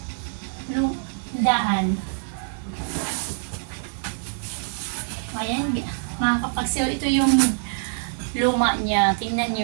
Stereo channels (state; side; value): silent; left; digital silence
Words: Daan. Ayan, mga kapaksil, ito yung luma niya. Tingnan